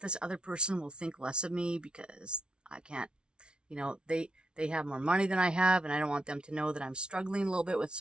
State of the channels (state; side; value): late; left; 0.056 ms